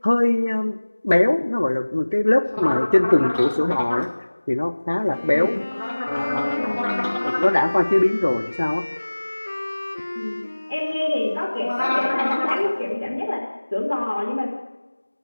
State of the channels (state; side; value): inverted; both; correlation -1.00